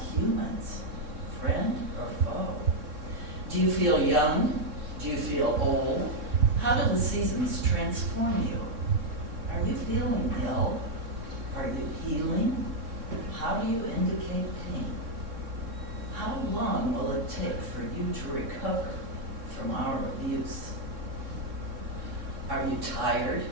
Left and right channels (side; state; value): left; late; 3.6 ms